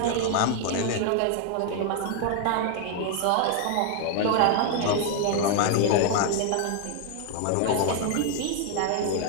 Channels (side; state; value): both; different; correlation 0.00